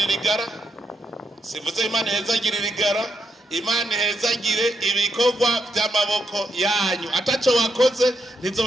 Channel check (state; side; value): normal; both; correlation 0.81